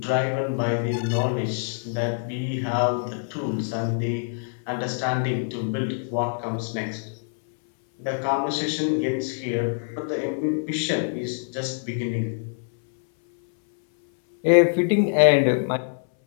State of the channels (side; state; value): right; silent; 61 dB below the other